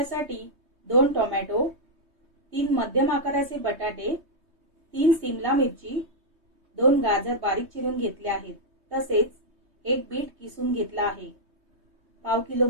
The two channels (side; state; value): left; late; 3.2 ms